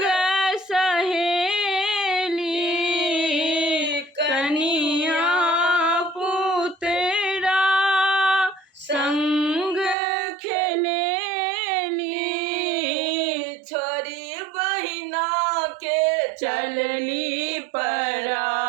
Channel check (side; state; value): left; drops out; at 10.0 s